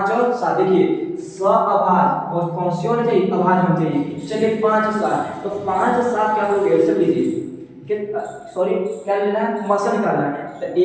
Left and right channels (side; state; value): both; identical; correlation 1.00